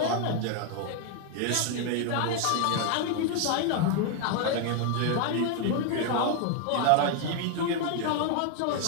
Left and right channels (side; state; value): both; different; correlation 0.00